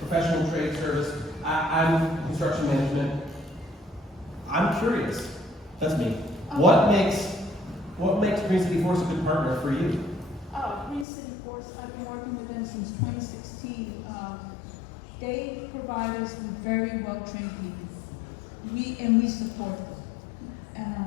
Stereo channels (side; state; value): right; drops out; at 11.1 s